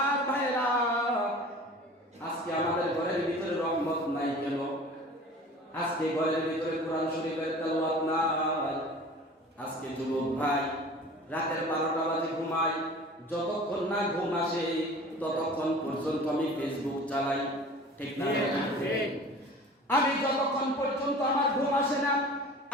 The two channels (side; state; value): both; normal; correlation 0.42